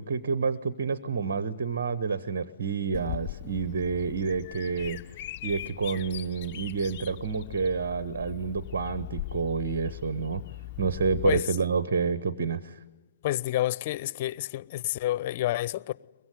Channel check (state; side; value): inverted; both; correlation -0.57